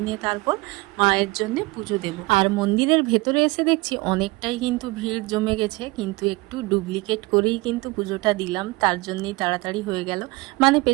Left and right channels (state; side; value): quieter; left; 23.1 dB